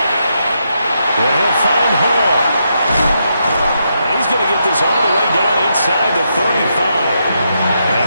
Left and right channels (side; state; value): both; inverted; correlation -0.81